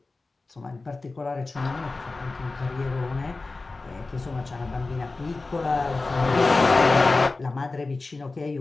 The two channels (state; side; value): quieter; right; 3.5 dB